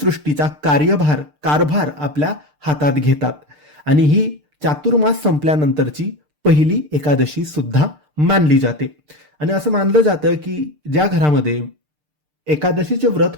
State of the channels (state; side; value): late; left; 6.7 ms